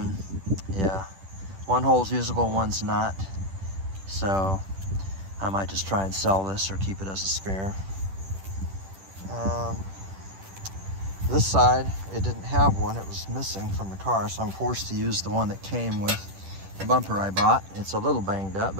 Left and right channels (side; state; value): left; late; 10 ms